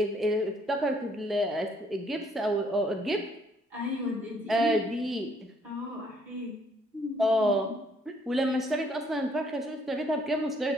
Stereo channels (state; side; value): normal; both; correlation 0.66